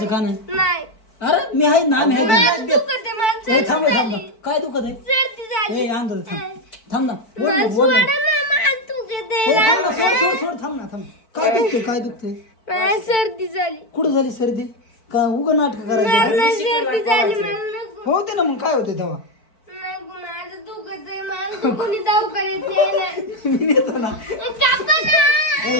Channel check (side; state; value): right; late; 4.5 ms